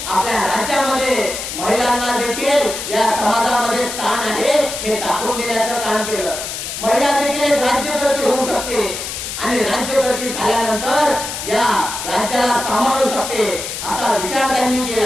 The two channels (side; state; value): left; noise; hiss, 6 dB below the sound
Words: आपल्या राज्यामध्ये महिलांना देखील या समाजामध्ये स्थान आहे हे दाखवून देण्याचं काम केलं. महिला देखील एक राज्यकर्ती होऊ शकते आणि राज्यकर्ती झाल्यानंतर या राज्याला सांभाळू शकते असा विचार त्यांनी